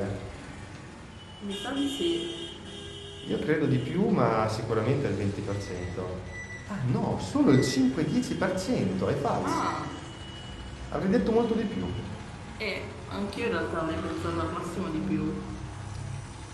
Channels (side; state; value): both; identical; correlation 1.00